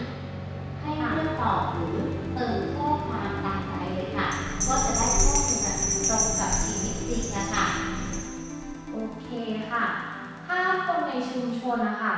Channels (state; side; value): identical; both; correlation 1.00